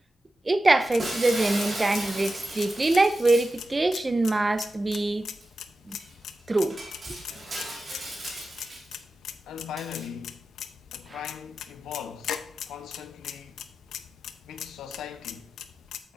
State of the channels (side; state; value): both; normal; correlation 0.92